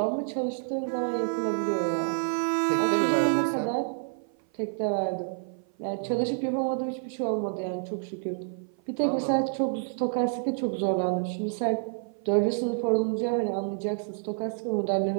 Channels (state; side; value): silent; left; 55 dB below the other